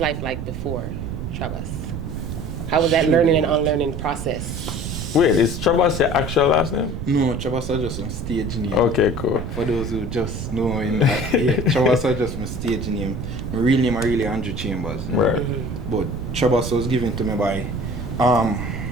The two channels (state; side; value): noise; right; rumble, 6 dB below the sound